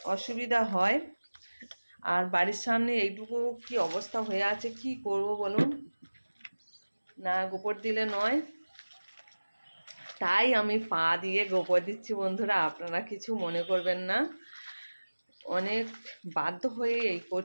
অসুবিধা হয়। আর বাড়ির সামনে এইটুকু কি অবস্থা হয়ে আছে, কি করব বলুন, না গোবর দিলে নয়। তাই আমি পা দিয়ে গোবর দিচ্ছি বন্ধুরা, আপনারা কিছু মনে করবেন না। অনেক বাধ্য হয়ে এই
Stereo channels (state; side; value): inverted; both; correlation -1.00